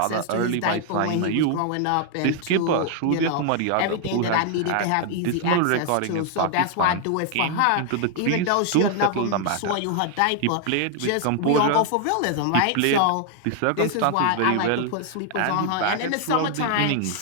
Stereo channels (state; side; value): different; both; correlation 0.00